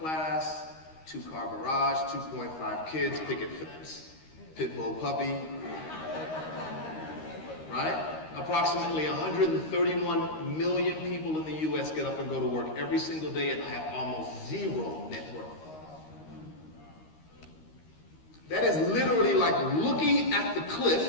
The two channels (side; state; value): right; late; 13 ms